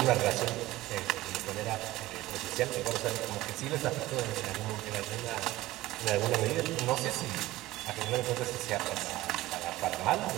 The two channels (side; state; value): left; quieter; 17.2 dB